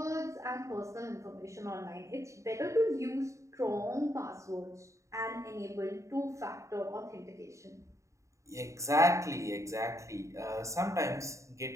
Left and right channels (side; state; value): left; late; 0.15 ms